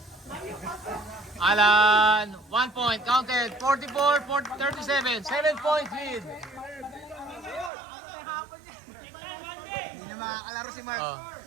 Alan, 1 point, counted, 44-37, 7 points lead. na makakalaro si Mark. Oh.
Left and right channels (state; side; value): drops out; left; at 7.7 s